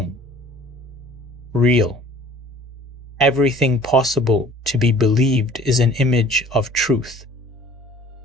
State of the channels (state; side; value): normal; both; correlation 0.50